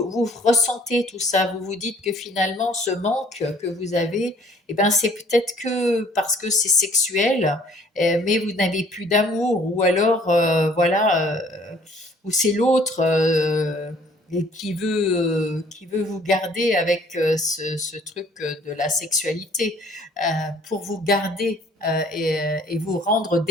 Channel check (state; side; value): normal; both; correlation 0.57